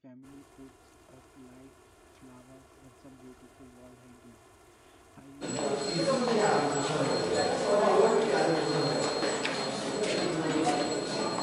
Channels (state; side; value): identical; both; correlation 1.00